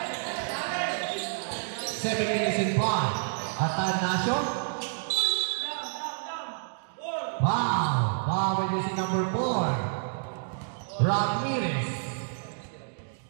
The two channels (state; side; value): silent; left; digital silence